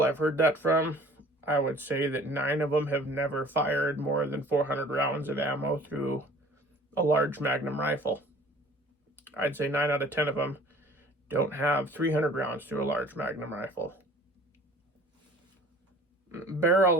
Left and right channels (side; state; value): both; normal; correlation 0.49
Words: I've heard that from, I would say that 9 of them have never fired more than 400 rounds of ammo through a large Magnum rifle. I'd say 9 out of 10 of them don't have 300 rounds through a large Magnum rifle. Barrel